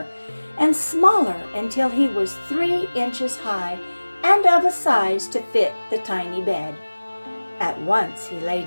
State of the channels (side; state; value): both; inverted; correlation -1.00